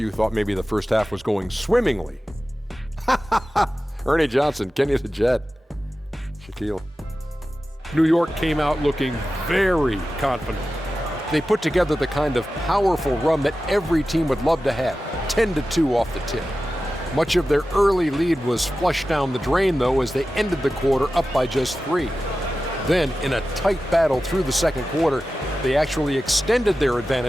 thought maybe the first half was going swimmingly. Ernie Johnson, Kenny the Jet, Shaquille. New York came out looking very confident. They put together the kind of powerful run that every team would love to have, 10-2 off the tip. Much of their early lead was flushed down the drain, though, as they ended the quarter up by just 3. Then, in a tight battle through the second quarter, they actually extended their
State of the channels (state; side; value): normal; both; correlation 0.94